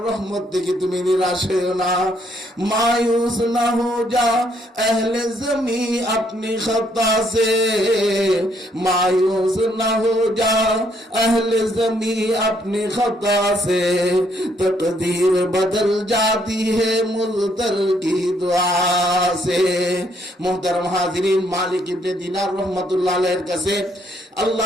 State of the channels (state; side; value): normal; both; correlation 0.70